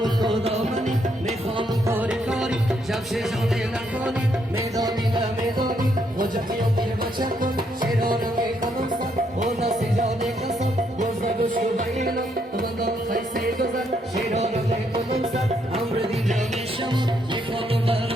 و خدا منی میخوام کاری کاری جمشه جانه نکنی میدانی نمیدانی خوجه خیام دیر بچه کن شیرانم ای کنم سن و نسی جانه کسان گوزه گوشو بایلان Şey rağmen komutsa, amre di jamin şamut,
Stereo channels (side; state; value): both; normal; correlation 0.74